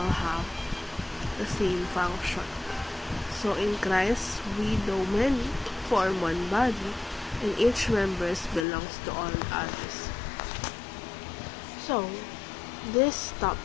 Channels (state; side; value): drops out; right; at 8.7 s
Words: have the same function. So in Christ, we though many form one body, and each member belongs to all others. So, this